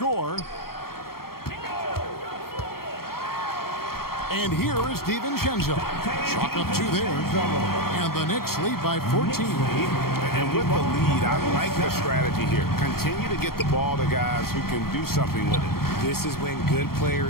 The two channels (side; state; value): right; late; 0.94 ms